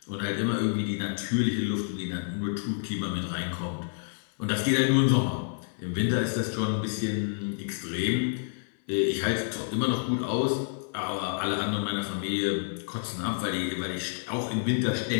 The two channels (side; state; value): right; silent; 59 dB below the other